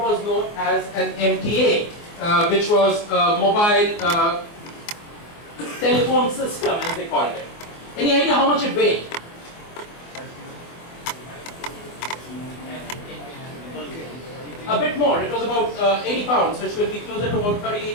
known as an MTA, which was a mobile telephone system, as they called it. Any idea how much it weighed? A bit more. It was about 80 pounds, which will be closer to about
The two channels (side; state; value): right; late; 24 ms